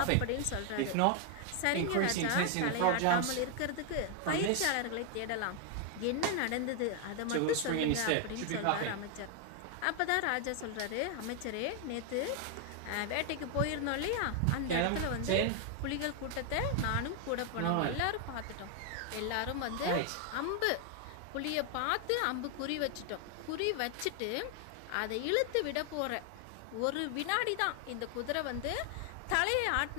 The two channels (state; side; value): different; both; correlation 0.00